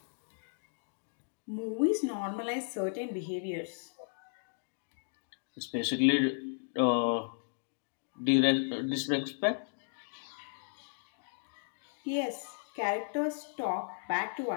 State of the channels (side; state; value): right; silent; digital silence